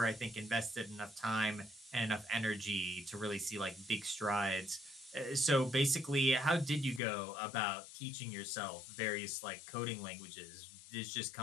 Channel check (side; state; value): right; drops out; at 7.0 s